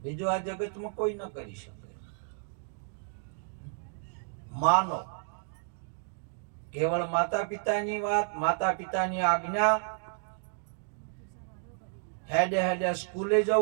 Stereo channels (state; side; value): silent; left; 57 dB below the other